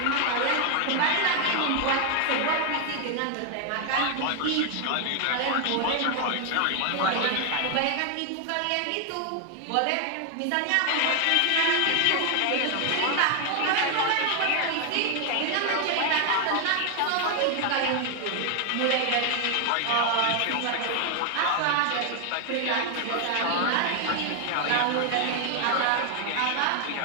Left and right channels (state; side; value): different; both; correlation 0.00